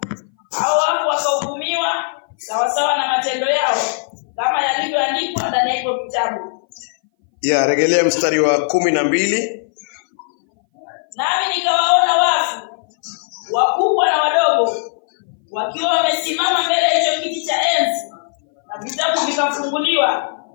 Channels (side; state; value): right; silent; 61 dB below the other